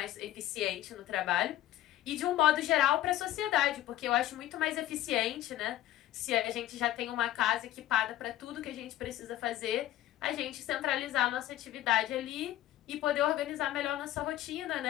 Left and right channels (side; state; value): right; quieter; 13.9 dB